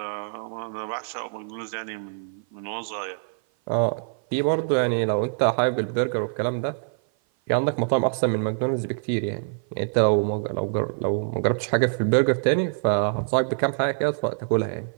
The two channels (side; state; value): left; silent; 56 dB below the other